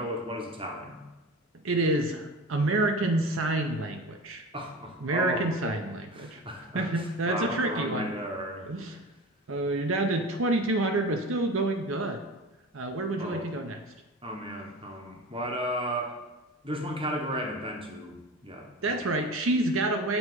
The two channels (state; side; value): normal; both; correlation 0.33